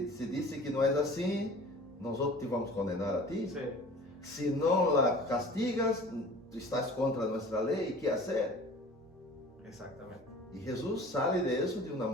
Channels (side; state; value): both; normal; correlation 0.44